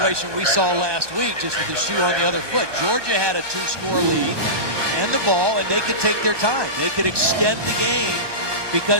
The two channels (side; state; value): left; late; 1.2 ms